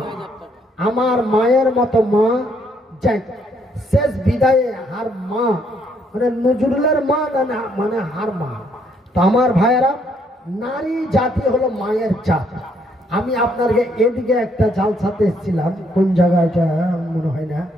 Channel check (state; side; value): normal; both; correlation 0.70